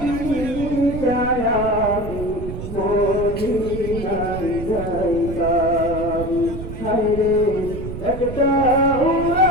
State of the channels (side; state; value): right; noise; rumble, 8 dB below the sound